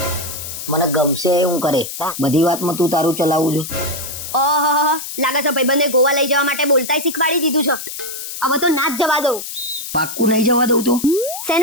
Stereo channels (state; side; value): noise; left; hiss, 8 dB below the sound